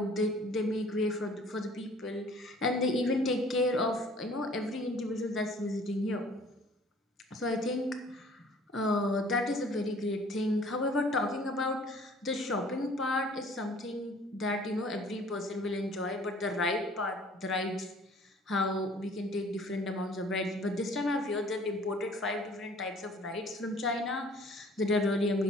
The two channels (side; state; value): both; normal; correlation 0.53